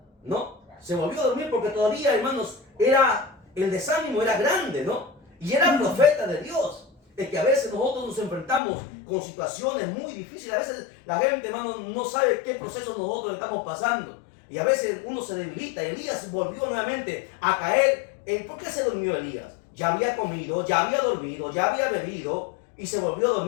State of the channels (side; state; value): right; drops out; at 8.6 s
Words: ¿no? Se volvió a dormir porque todavía, hermanos, el desánimo era grande, ¿no? Y era profeta de Dios. Es que a veces nosotros nos enfrentamos con situaciones muy difíciles. A veces la gente, hermano, no sabe qué proceso nosotros estamos pasando. Y a veces uno se debilita. Elías volvió nuevamente a caer. ¿Por qué se durmió Elías? Ya había comido, ya había dormido, ya había bebido y se volvió a